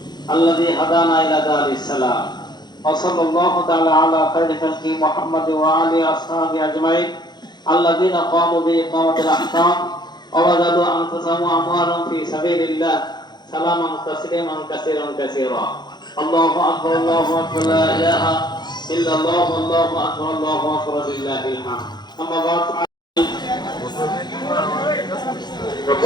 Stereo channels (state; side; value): late; right; 0.21 ms